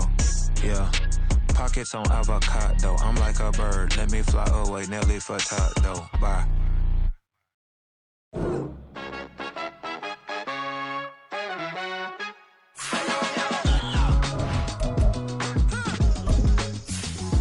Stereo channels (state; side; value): identical; both; correlation 1.00